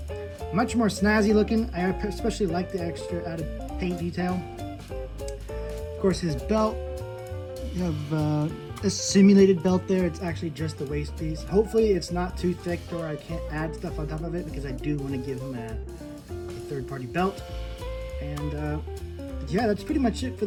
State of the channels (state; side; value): identical; both; correlation 1.00